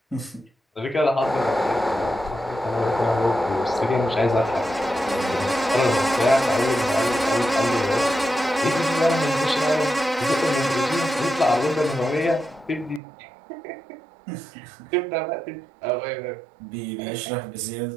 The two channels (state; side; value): drops out; left; at 13.0 s